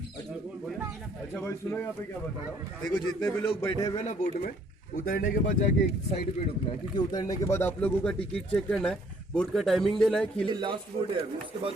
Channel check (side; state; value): both; normal; correlation 0.63